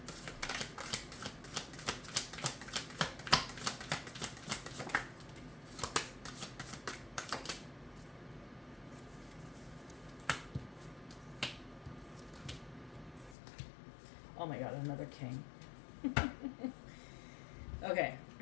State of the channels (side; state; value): right; drops out; at 13.4 s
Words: Oh my god, another king. Okay.